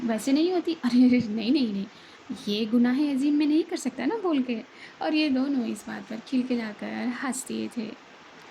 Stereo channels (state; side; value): identical; both; correlation 1.00